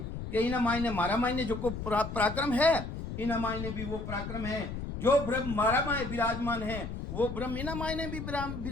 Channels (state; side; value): noise; left; rumble, 7 dB below the sound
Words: कि इना मायने मारा मायने जो को पराक्रम है इना मायने भी वो पराक्रम है जो ब्रह्म मारा माय विराजमान है वो ब्रह्म इना मायने भी